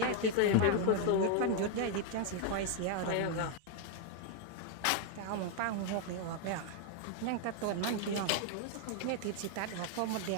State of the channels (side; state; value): both; different; correlation 0.00